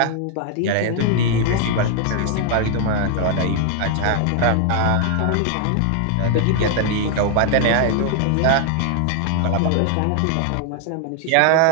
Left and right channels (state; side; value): different; both; correlation 0.00